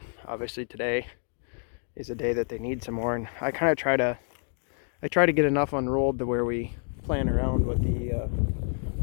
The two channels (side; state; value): right; silent; 58 dB below the other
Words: obviously today is a day that they need some more, and I kind of try to get enough unrolled to where we plan around what the